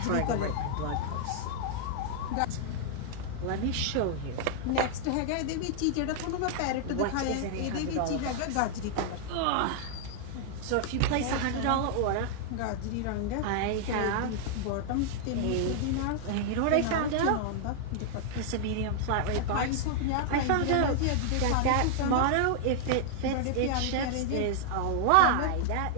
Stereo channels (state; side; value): different; both; correlation -0.01